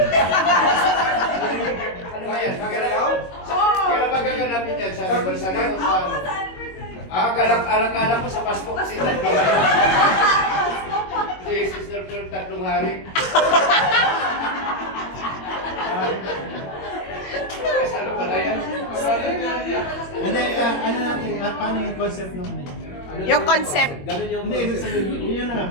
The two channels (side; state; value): right; late; 21 ms